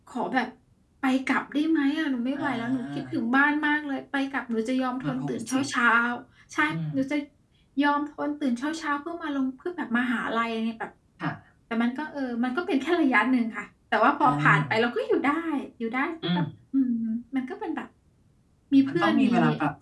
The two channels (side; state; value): both; identical; correlation 1.00